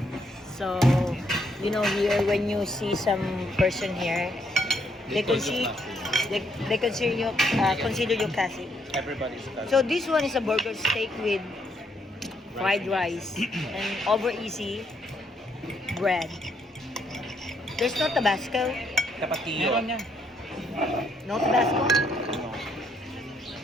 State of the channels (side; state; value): both; normal; correlation 0.73